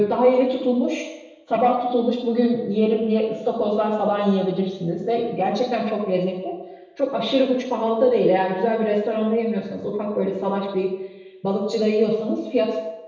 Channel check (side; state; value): both; identical; correlation 1.00